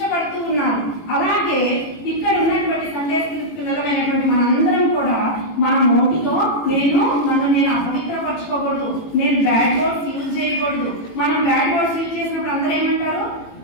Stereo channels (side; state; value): right; late; 18 ms